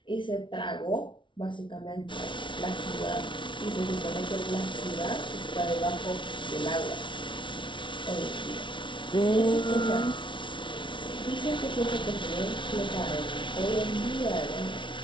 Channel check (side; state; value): right; late; 0.24 ms